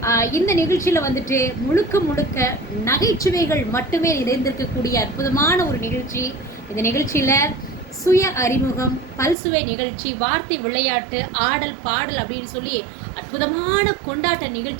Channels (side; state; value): left; drops out; at 9.3 s